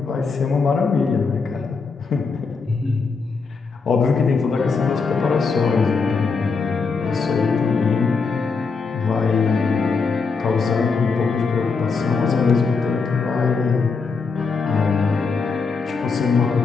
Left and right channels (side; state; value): right; quieter; 4.8 dB